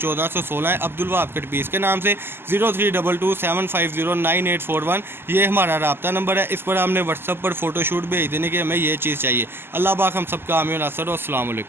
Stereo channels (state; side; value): late; left; 0.11 ms